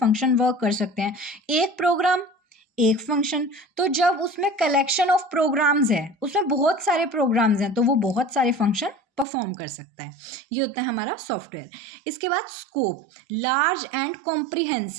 वर्क कर सकते हैं। एक प्रोग्राम एक फंक्शन, तो जब उसमें कलेक्शन ऑफ प्रोग्राम्स है, उसमें बहुत सारे प्रोग्राम्स हैं, तो वो बहुत सारे फंक्शन परफॉर्म कर सकता है। ये होता है हमारा सॉफ्टवेयर। इसके बाद scope, large and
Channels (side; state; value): left; drops out; at 9.2 s